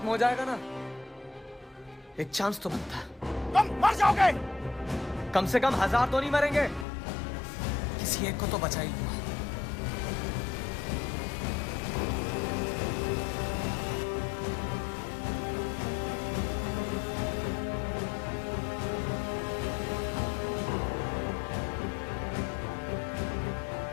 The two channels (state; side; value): drops out; right; at 6.9 s